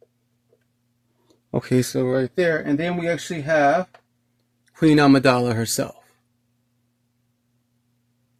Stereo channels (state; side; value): identical; both; correlation 1.00